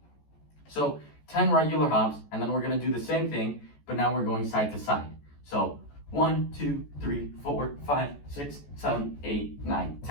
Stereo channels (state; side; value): late; right; 14 ms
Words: So 10 regular hops, and then we're going to do the same thing, but now we're going side to side. So 1, 2, 3, 4, 5, 6, 7, 8, 9,